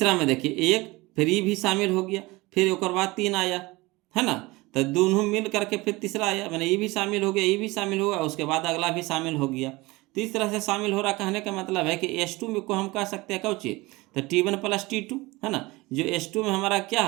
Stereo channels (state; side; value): quieter; left; 22.0 dB